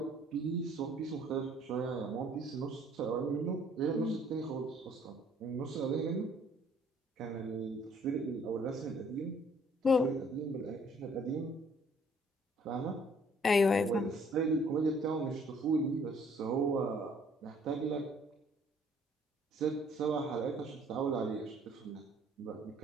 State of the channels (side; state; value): both; normal; correlation 0.60